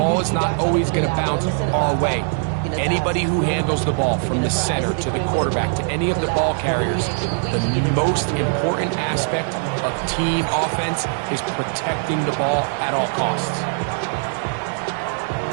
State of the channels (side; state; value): left; silent; 57 dB below the other